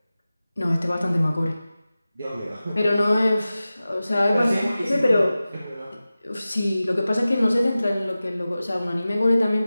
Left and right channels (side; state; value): both; inverted; correlation -0.96